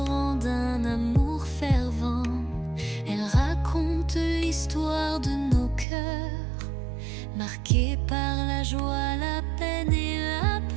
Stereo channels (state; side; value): drops out; left; at 5.9 s